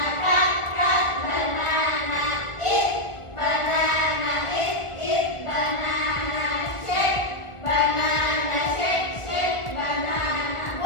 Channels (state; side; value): late; right; 1.4 ms